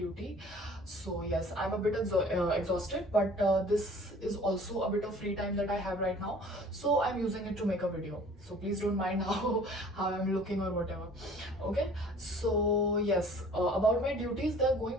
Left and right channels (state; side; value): normal; both; correlation 0.50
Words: So yes, I'm a bit exhausted, but this is also a bit of free time that I have right now, so I'm using it to make a video. So please don't mind how I'm looking or whatever. Okay, so yes, about my duties, they're going